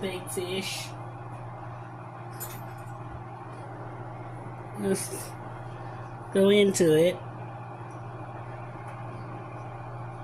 fish. Let's go into it.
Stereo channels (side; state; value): both; identical; correlation 1.00